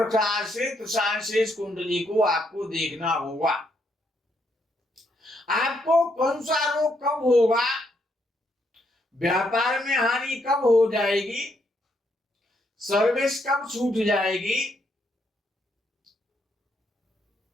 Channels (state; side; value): normal; both; correlation 0.75